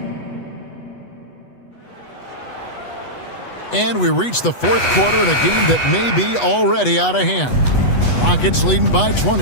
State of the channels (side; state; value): right; late; 8.1 ms